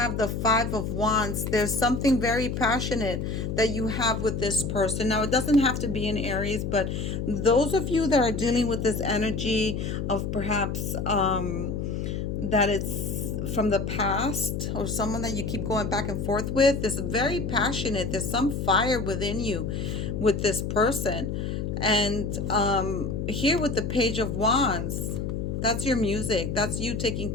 the Five of Wands. There's something very passionate that you have with this person. Now, it doesn't have to be in Aries, but those of you that are dealing with this energy of perhaps that it's from the past, or someone that you keep going back and forth with, is very passionate. There's some fire within you with this person. And here with the Page of Wands, that's your music. That's you taking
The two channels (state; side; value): noise; left; hum, 3 dB below the sound